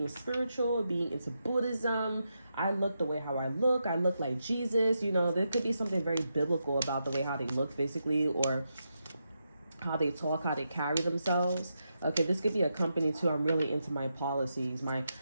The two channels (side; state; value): both; inverted; correlation -0.85